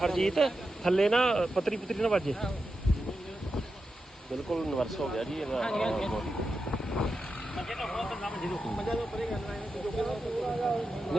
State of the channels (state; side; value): normal; both; correlation 0.89